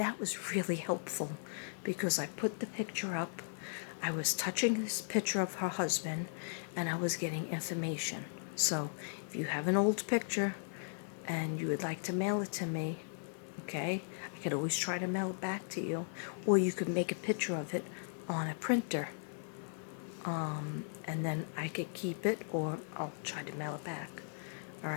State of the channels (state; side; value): silent; right; 53 dB below the other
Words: was really helpful because I put the picture up, I was touching this picture of her husband, and I was getting information. So if you have an old picture and you would like to mail it to me, okay, I could always try to mail it back to you. Or you could make a picture of it on a printer. And then I could keep it, or I'll try to mail it back. All